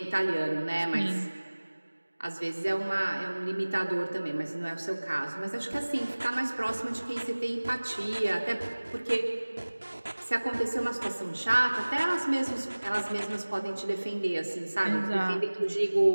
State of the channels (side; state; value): both; inverted; correlation -1.00